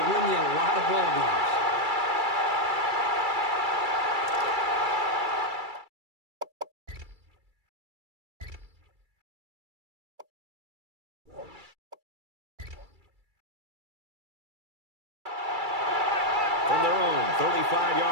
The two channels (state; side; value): late; left; 2.3 ms